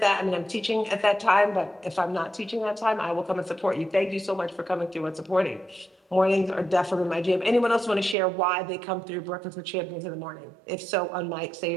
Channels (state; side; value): drops out; left; at 8.2 s